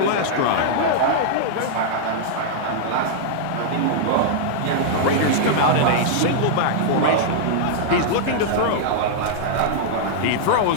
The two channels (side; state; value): both; different; correlation -0.01